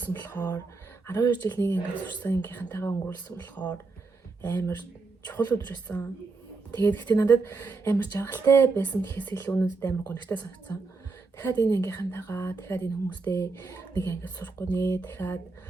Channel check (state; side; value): quieter; left; 4.0 dB